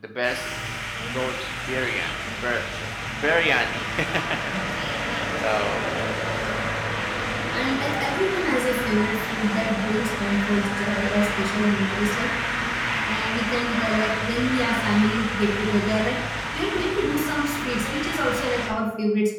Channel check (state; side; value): identical; both; correlation 1.00